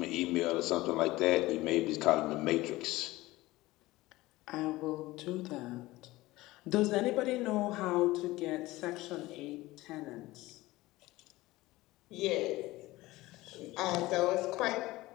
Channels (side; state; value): right; quieter; 18.8 dB